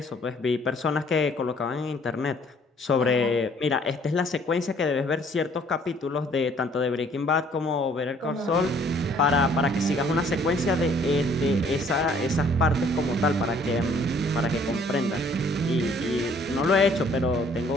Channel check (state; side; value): normal; both; correlation 0.60